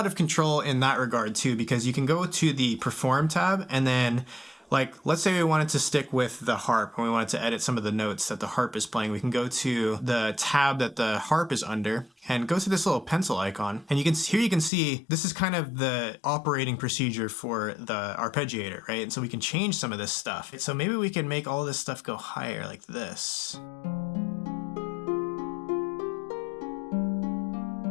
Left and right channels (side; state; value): right; drops out; at 14.7 s